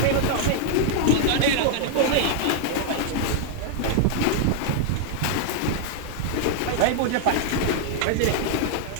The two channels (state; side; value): different; both; correlation 0.00